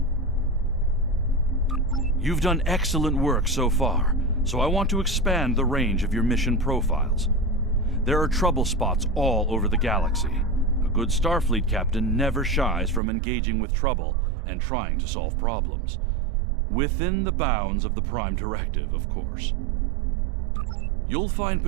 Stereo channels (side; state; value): left; drops out; at 13.0 s